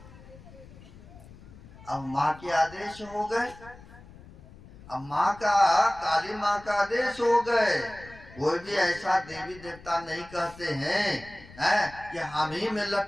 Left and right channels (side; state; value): left; noise; rumble, 20 dB below the sound